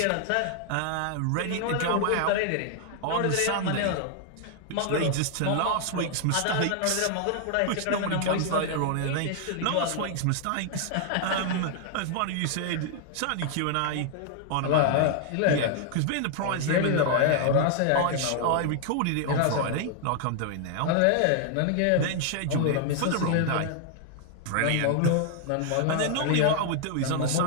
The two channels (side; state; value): both; different; correlation 0.00